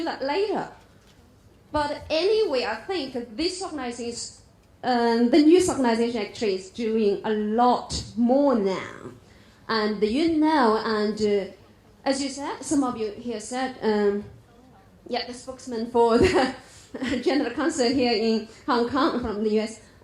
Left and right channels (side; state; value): both; identical; correlation 1.00